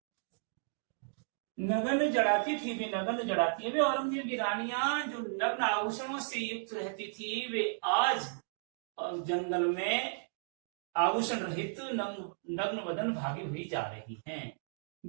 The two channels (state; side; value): silent; left; digital silence